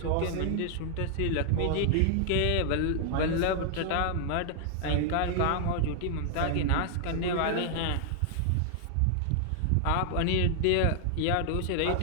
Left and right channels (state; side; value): different; both; correlation -0.01